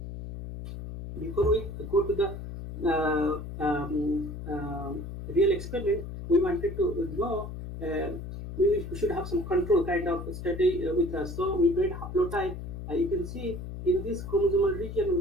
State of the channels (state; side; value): noise; left; hum, 9 dB below the sound